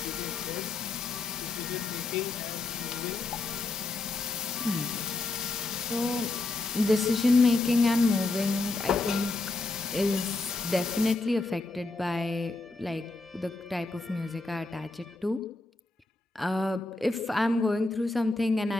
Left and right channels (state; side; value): quieter; right; 3.2 dB